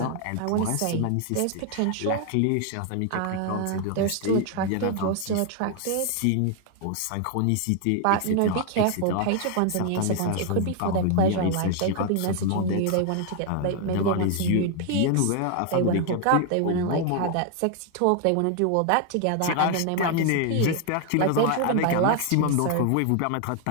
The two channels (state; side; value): different; both; correlation 0.00